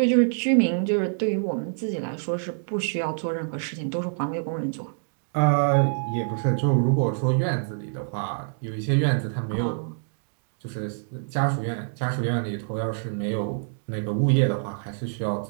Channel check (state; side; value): silent; left; digital silence